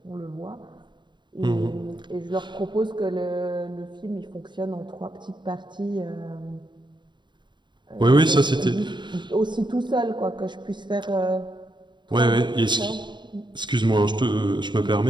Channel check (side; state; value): left; late; 0.22 ms